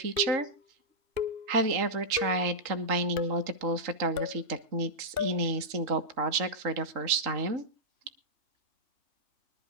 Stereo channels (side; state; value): left; late; 3.7 ms